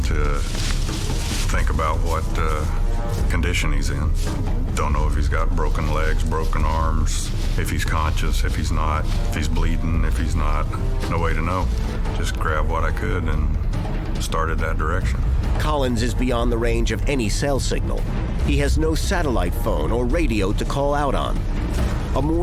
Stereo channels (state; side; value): identical; both; correlation 1.00